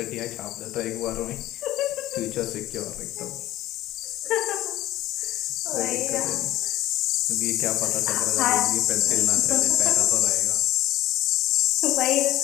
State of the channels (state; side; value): quieter; right; 15.6 dB